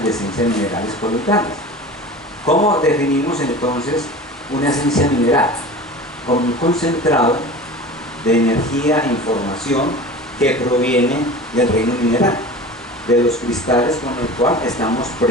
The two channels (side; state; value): both; normal; correlation 0.36